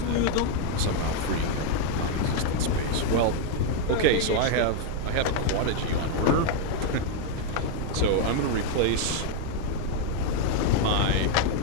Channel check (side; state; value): both; different; correlation 0.01